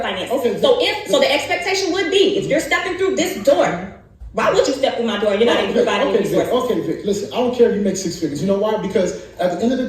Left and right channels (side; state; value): both; identical; correlation 1.00